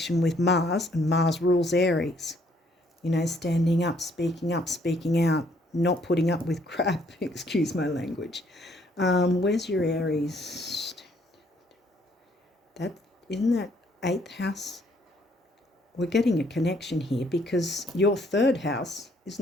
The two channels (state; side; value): normal; both; correlation 0.66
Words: with Mars, and Mars rules Aries. You know, standing up, speaking out, not putting up with crap, excuse my language. Where's your Aries? Isn't that 8th house? We're getting a connection here, because your 3rd house,